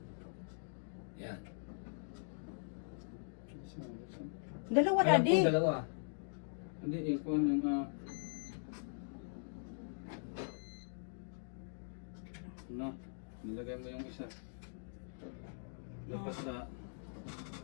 Yan. Dalawa, Alam daddy. ko dalawa. Hindi, yung kuhan ng ano, nilagay mo yung isa. Labas na.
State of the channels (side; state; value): right; silent; digital silence